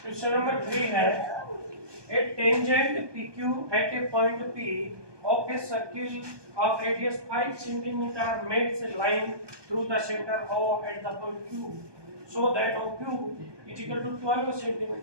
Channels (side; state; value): left; late; 1.2 ms